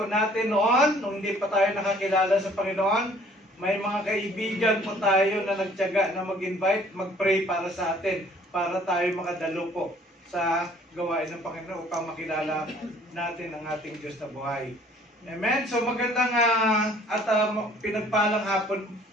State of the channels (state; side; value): normal; both; correlation 0.56